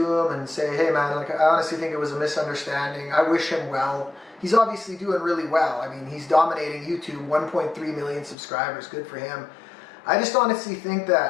him and say, hey man, like, I honestly think it was a misunderstanding. I wish him well. He's obviously doing really well. I mean, he's dominating YouTube, 1.3 million subscribers, good for him. I just honestly think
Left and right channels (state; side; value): drops out; right; at 8.3 s